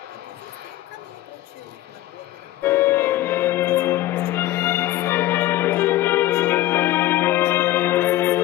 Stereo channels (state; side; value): quieter; right; 15.3 dB